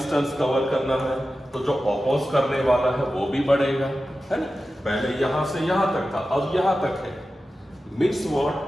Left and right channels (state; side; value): normal; both; correlation 0.93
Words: cover करना है, तो जो oppose करने वाला है वो भी बढ़ेगा, है ना? पहले यहाँ से यहाँ तक था, अब यहाँ तक है. Means what?